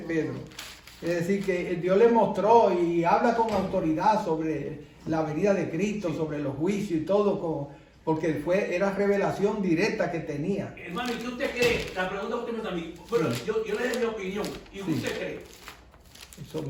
Es decir, que Dios le mostró y habla con autoridad sobre la venida de Cristo, sobre los juicios y todo, porque era revelación directa que tenía. Hermano, ¿y qué usted cree? La pregunta que usted me está a mí. Bueno, yo le doy mi opinión. ¿Y usted cree? Eso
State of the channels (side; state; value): both; identical; correlation 1.00